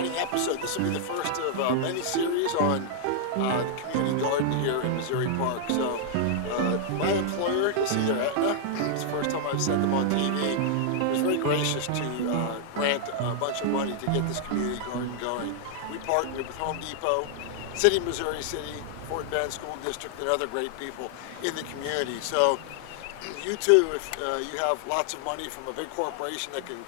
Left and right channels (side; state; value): both; different; correlation -0.01